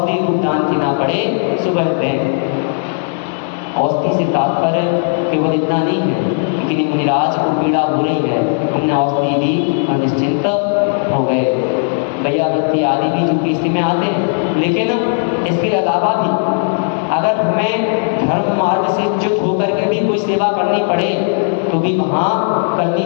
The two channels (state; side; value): silent; right; 62 dB below the other